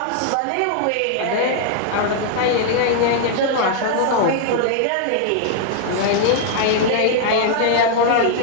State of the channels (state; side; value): different; both; correlation -0.01